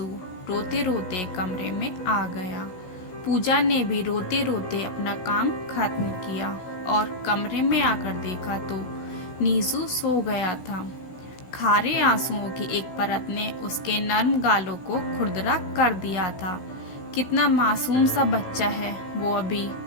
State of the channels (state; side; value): late; right; 16 ms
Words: रोते रोते कमरे में आ गया। पूजा ने भी रोते रोते अपना काम खत्म किया और कमरे में आकर देखा तो नीसू सो गया था। खारे आंसुओं की एक परत ने उसके नर्म गालों को खुरदरा कर दिया था। कितना मासूम सा बच्चा है वो, अभी